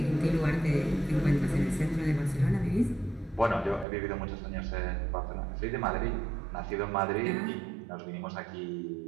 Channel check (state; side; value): drops out; left; at 3.9 s